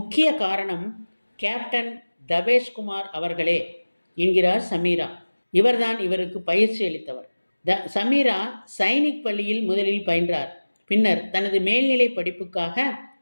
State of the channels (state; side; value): inverted; both; correlation -1.00